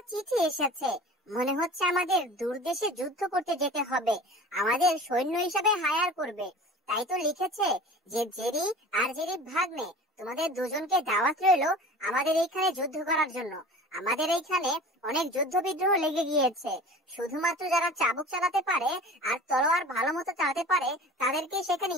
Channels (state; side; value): normal; both; correlation 0.40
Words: চিঠি এসেছে। মনে হচ্ছে আমাদের দূর দেশে যুদ্ধ করতে যেতে হবে, আমাদের সৈন্য হিসাবে হায়ার করবে। তাই তো লিখেছে যে জেরি আর জেরি ভাগ্নে, তোমাদের দুজনকে দাওয়াত রইলো আমাদের এইখানে যুদ্ধ করার জন্য। আমাদের এইখানে অনেক যুদ্ধ বিদ্রোহ লেগে গিয়েছে। শুধুমাত্র যারা চাবুক চালাতে পারে আর তলোয়ার ভালো মতো চালাতে পারে তাদেরকে সেখানে